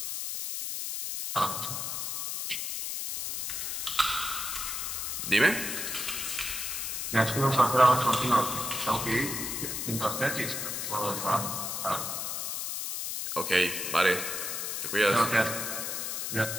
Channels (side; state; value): left; noise; hiss, 3 dB below the sound